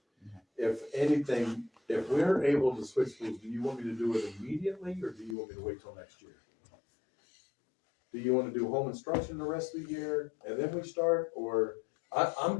If anything, if we're able to switch schools, do you want me to do it immediately, or do you want me to wait till next year? Do you wanna do home instruction the rest of the year, and then we start, or,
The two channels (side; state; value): right; drops out; at 5.4 s